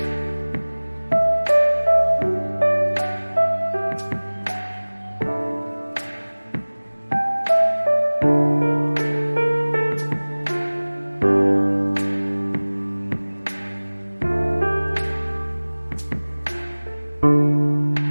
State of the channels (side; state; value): both; inverted; correlation -1.00